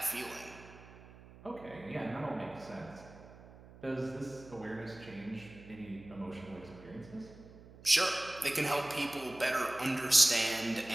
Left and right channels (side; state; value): right; noise; hum, 20 dB below the sound